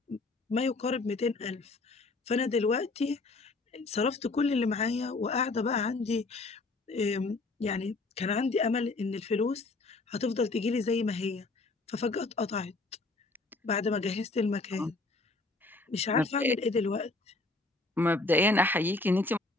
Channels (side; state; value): right; quieter; 3.4 dB